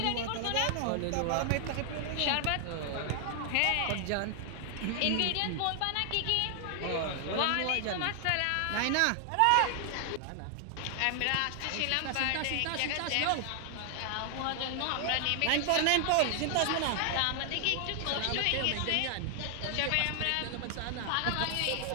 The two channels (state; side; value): different; both; correlation 0.00